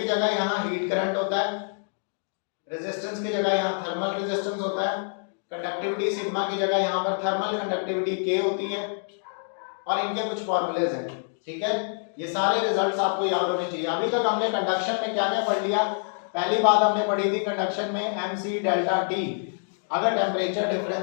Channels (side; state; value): right; silent; digital silence